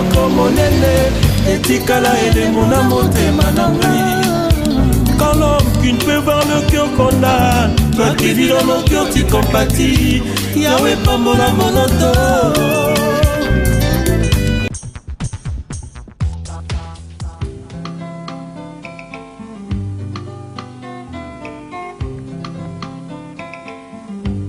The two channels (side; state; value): both; identical; correlation 1.00